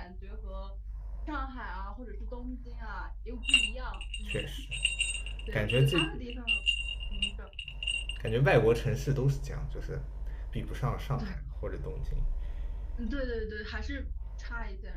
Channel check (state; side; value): identical; both; correlation 1.00